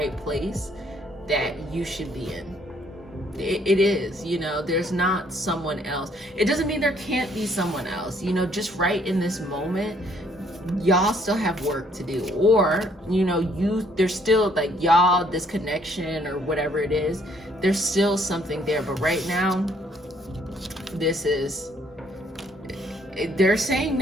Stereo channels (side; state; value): both; normal; correlation 0.65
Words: place that you should be in. It is, you know, there's not someone else. It doesn't mean there can't be someone else, you know, just right in this moment, y'all still have work to do, or, you know, there's still like y'all, this connection or whatever it is, there's still something there. But right now, they're saying